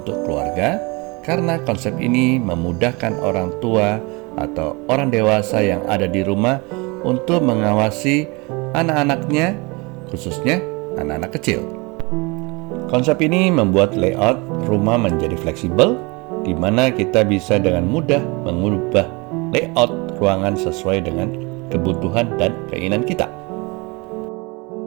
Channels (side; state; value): left; quieter; 27.2 dB